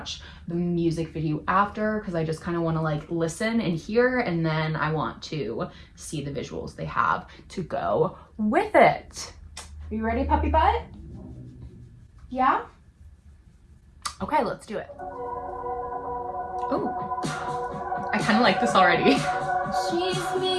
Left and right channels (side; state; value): both; identical; correlation 1.00